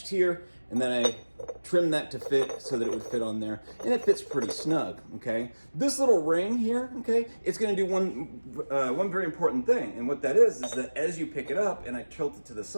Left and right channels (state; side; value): inverted; both; correlation -1.00